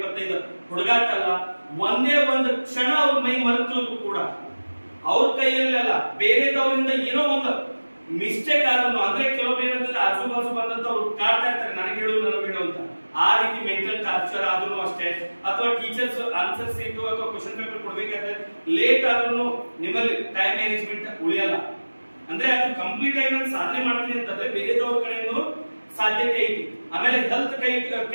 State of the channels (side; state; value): both; inverted; correlation -1.00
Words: ಹುಡುಗಾಟಲ್ಲ. ಒಂದೇ ಒಂದು ಕ್ಷಣ ಅವ್ರ ಮೈ ಮರೆತರು ಕೂಡ ಅವ್ರ ಕೈಯಲ್ಲಿ ಅಲ್ಲ, ಬೇರೆದವರಿಂದ ಏನೋ ಒಂದು ಮಿಸ್ಟೇಕ್ ಆದ್ರೂ, ಅಂದ್ರೆ ಕೆಲವೊಬ್ರು ಏನಂತಂದ್ರೆ ಆಜು ಬಾಜು ಬಂದಂತ ಅವ್ರು ಕಾಡ್ತಾ ಇರ್ತಾರೆ, ನನಗೆ ಹೇಳು ನನಗೆ ಹೇಳು ಅಂತ. ಆ ರೀತಿ ಮೆಂಟಲ್ ಟಾರ್ಚರ್ ಆದ್ರೂ ಅಷ್ಟೇ, ಅಥವಾ ಟೀಚರ್ಸ್ ಆನ್ಸರ್ ಸೀಟು ಅಥವಾ ಕ್ವಶನ್ ಪೇಪರ್ ಕೊಡ್ಬೇಕಾದ್ರೆ ಲೇಟ್ ಆದ್ರೂ ನಿಮ್ಮಲ್ಲಿ ಟೈಮ್ ಮ್ಯಾನೇಜ್ಮೆಂಟ್ ಉಳಿಯಲ್ಲ. ಅಂದ್ರೆ ಅದು ಕಂಪ್ಲೀಟ್ ಆಗಿ ನಾನು ಸಾಧನೆ ಮಾಡ್ತೀನಿ ಅಂತಂದ್ರೆ ಬೇರೆದವ್ರ ಕಡೆಯಿಂದ ಸಾಧ್ಯತೆ ಐತಿ. ಆಮೇಲೆ ಹೆಲ್ತ್